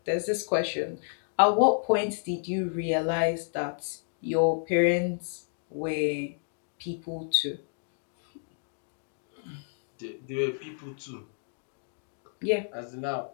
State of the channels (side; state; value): right; silent; digital silence